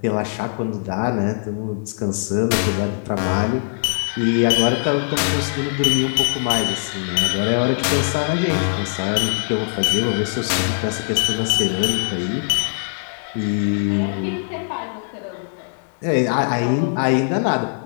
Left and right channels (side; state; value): right; silent; digital silence